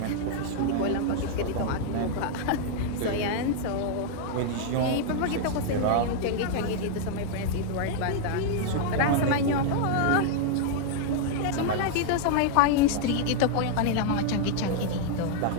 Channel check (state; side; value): different; both; correlation 0.00